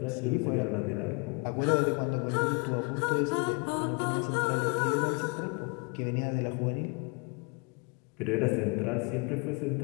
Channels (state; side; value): quieter; right; 33.0 dB